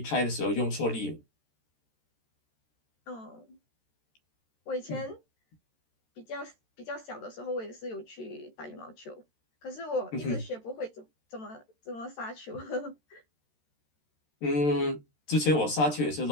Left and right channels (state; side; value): late; right; 13 ms